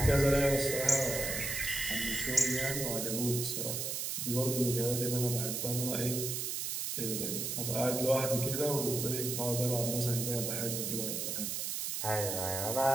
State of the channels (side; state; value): right; noise; hiss, 2 dB below the sound